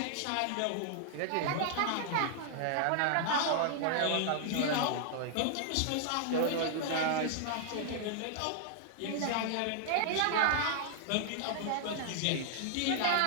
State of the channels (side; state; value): both; different; correlation -0.01